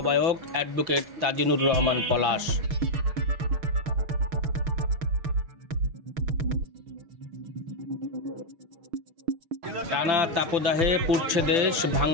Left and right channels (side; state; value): left; late; 5.9 ms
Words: অ্যাডভোকেট তাজিনুর রহমান পলাশ। টানা তাপদাহে পুড়ছে দেশ,